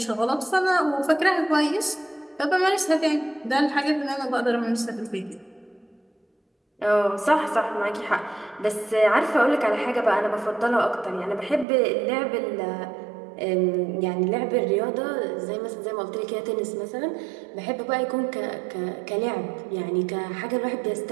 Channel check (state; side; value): drops out; left; at 11.7 s